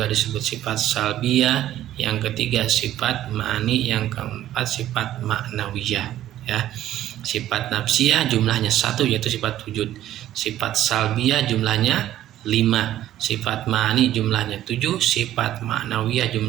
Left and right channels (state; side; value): quieter; left; 12.8 dB